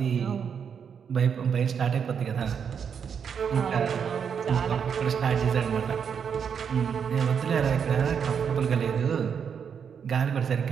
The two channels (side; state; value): left; quieter; 7.1 dB